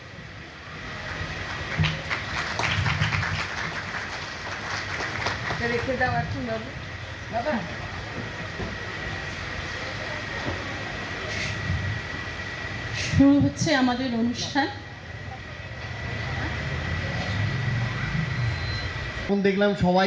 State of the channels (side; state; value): both; identical; correlation 1.00